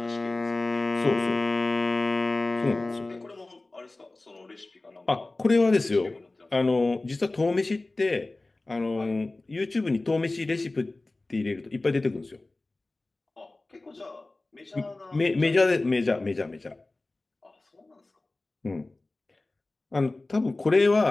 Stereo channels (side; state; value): right; quieter; 3.0 dB